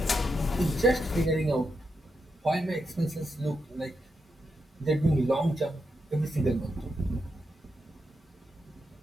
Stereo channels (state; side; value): normal; both; correlation 0.84